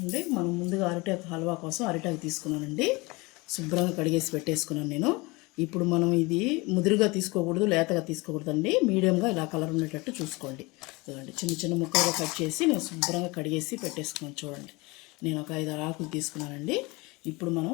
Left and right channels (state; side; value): quieter; right; 24.7 dB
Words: మనం ముందుగా అరిటాకు హల్వా కోసం అరిటాకు తీసుకున్నానండి. శుభ్రంగా కడిగేసి పెట్టేసుకున్నాను నేను. ఇప్పుడు మనం ఇది ముదురుగా తీసుకోకూడదు, లేతగా తీసుకోకూడదండి. మీడియంగా ఇలా కలర్ ఉండేటట్టు చూసుకోండి. చూడండి, చిన్న చిన్న ముక్కలుగా కట్ చేసి నేను శుభ్రంగా కడిగేసి పెట్టేసుకున్నాను. చూడండి, నేను ఒక 5-6 ఆకులు తీసుకున్నానండి. ఇప్పుడు మనం